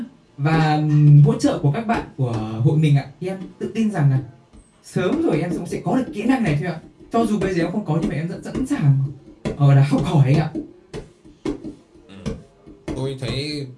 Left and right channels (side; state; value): both; identical; correlation 1.00